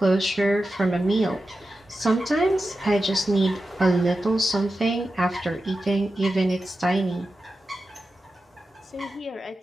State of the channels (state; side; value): normal; both; correlation 0.92